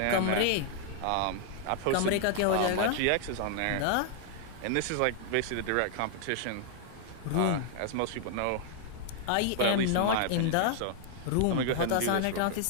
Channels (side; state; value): both; different; correlation 0.00